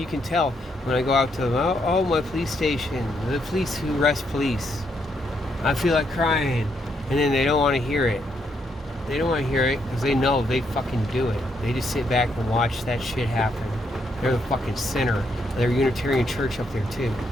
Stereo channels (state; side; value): normal; both; correlation 0.76